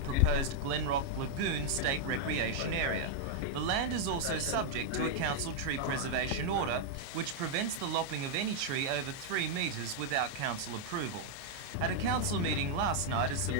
Glenrock Lagoon State Recreation Area. The land is also subject to a council tree preservation order, which prevents the lopping of any tree over 3 metres without council approval. At a council meeting last night, a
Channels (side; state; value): left; late; 29 ms